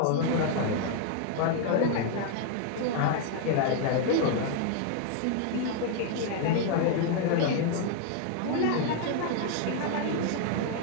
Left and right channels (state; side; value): different; both; correlation 0.00